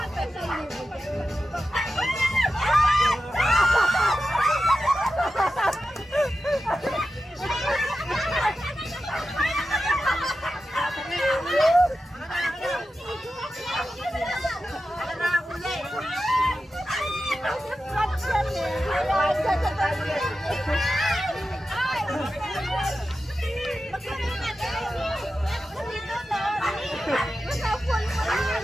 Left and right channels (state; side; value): normal; both; correlation 0.92